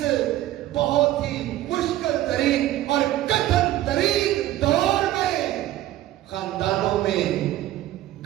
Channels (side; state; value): left; quieter; 14.3 dB